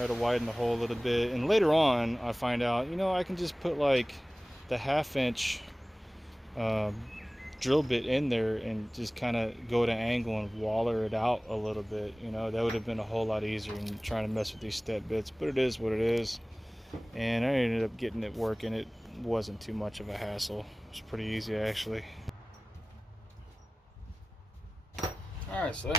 to widen the hole a little bit, and later on I find out, you know, I can just put like the 1/2" drill bit in there and just kind of go to angle and waller it out a little bit. You know, that would have been a whole lot easier than trying to mess with these step bits, but it is what it is. And I ended up getting it working. It wasn't too much of a hassle. It was pretty easy actually. Alright, so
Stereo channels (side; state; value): both; normal; correlation 0.98